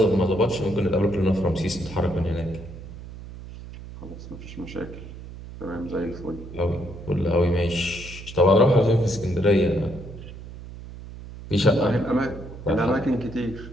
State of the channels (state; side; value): noise; right; hum, 13 dB below the sound